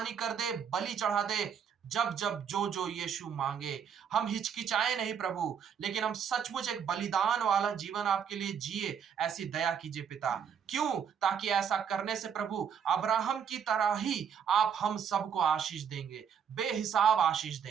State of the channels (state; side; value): quieter; left; 7.7 dB